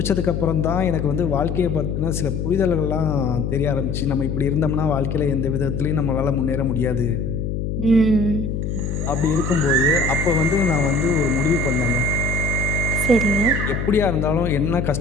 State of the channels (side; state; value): left; noise; hum, 2 dB below the sound